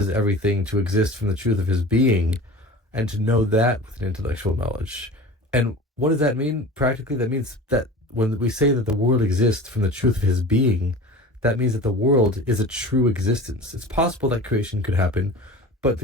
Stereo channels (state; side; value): normal; both; correlation 0.37